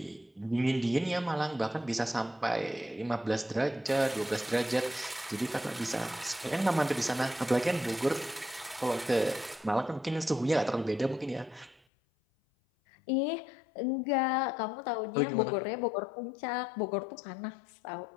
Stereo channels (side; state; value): right; drops out; at 11.8 s